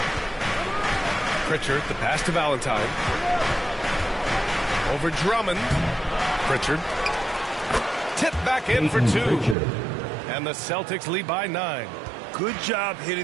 Pritchard, the pass to Valentine. Over Drummond. Pritchard. Tip back in for two. And the Celtics lead by 9. Good job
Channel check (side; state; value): left; drops out; at 9.6 s